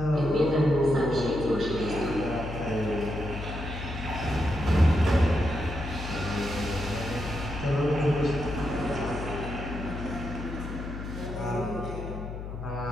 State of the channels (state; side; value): noise; left; hum, 8 dB below the sound